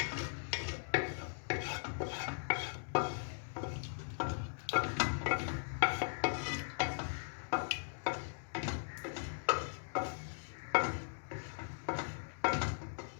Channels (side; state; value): right; silent; digital silence